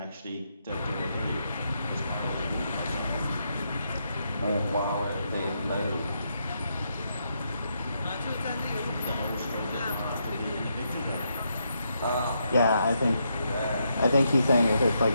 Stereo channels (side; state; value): both; inverted; correlation -0.80